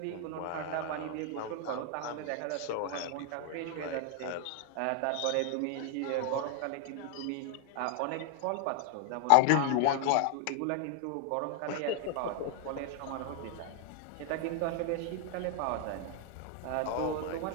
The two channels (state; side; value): different; both; correlation 0.00